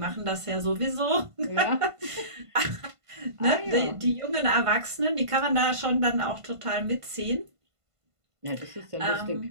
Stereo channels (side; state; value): left; late; 1.5 ms